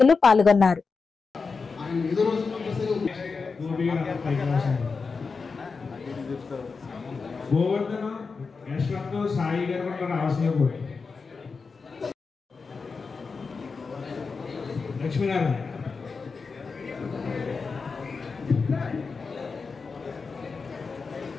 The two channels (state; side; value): quieter; right; 4.7 dB